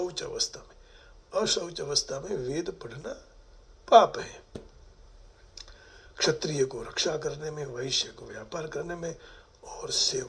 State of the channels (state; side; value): identical; both; correlation 1.00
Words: अवस्था में, अशौच अवस्था में वेद पढ़ना पाप है। क्षत्रिय को रक्षा करने में, वैश्य को व्यापार करने में और